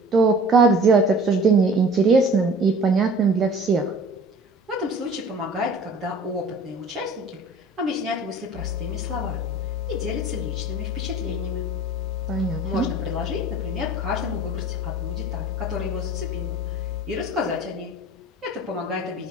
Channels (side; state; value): both; normal; correlation 0.45